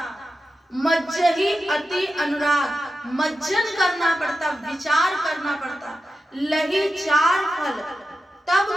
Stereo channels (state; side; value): normal; both; correlation 0.91